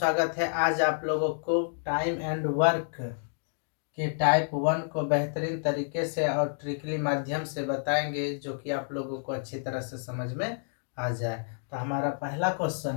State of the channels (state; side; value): silent; right; digital silence